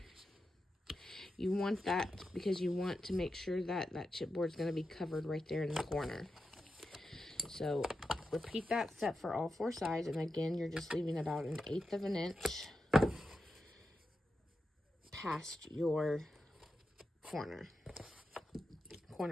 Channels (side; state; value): both; normal; correlation 0.89